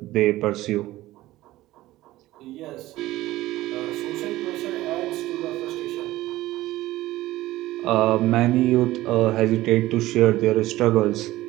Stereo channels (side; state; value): left; quieter; 16.7 dB